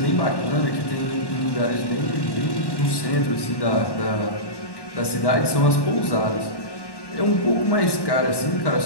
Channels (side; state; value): right; late; 1.1 ms